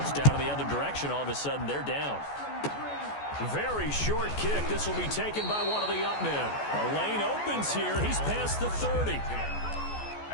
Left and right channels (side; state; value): right; late; 14 ms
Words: in the other direction, all of a sudden they're down. Very short kick. This will be taken by one of the up men. A lane opens here. He's past the 30.